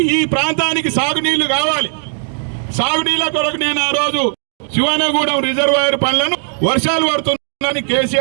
ఈ ప్రాంతానికి సాగునీళ్లు కావాలి. సాగునీళ్ళ కొరకు నేను ఆ రోజు శివానగూడెం రిజర్వాయర్ పనులను వర్షాలు పడుతుందని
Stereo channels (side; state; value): left; silent; 59 dB below the other